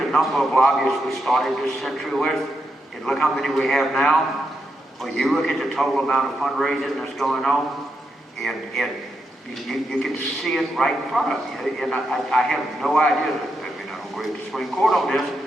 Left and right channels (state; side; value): normal; both; correlation 0.83